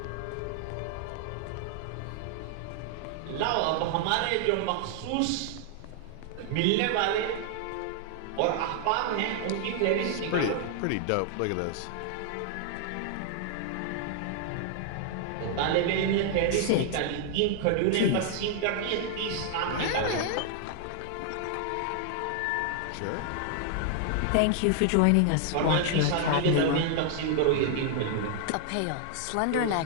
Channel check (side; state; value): both; different; correlation 0.00